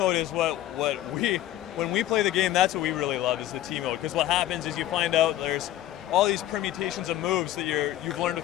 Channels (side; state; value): right; quieter; 13.7 dB